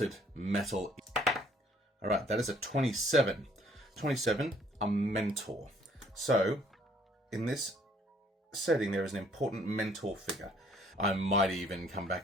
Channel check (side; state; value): both; normal; correlation 0.61